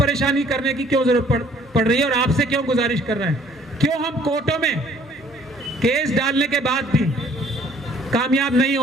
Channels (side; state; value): both; normal; correlation 0.58